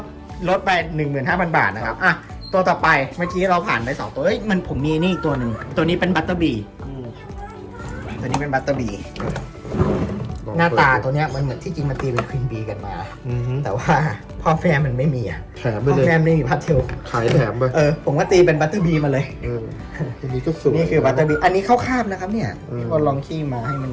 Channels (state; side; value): identical; both; correlation 1.00